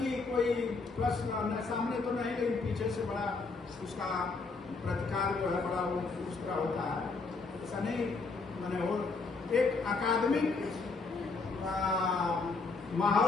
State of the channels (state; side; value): quieter; right; 4.1 dB